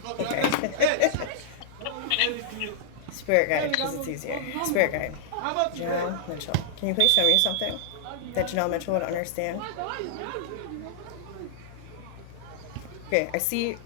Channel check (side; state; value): both; different; correlation -0.02